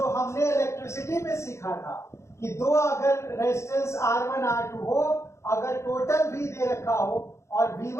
हमने इलेक्ट्रिसिटी में सीखा था कि 2 अगर रेजिस्टेंस R1 R2 हो, अगर टोटल V दे रखा हो और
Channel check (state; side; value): late; right; 0.14 ms